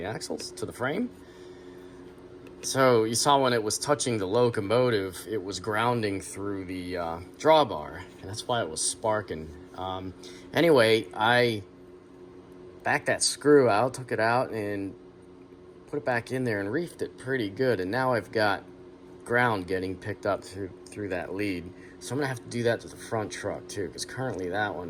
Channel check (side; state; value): both; identical; correlation 1.00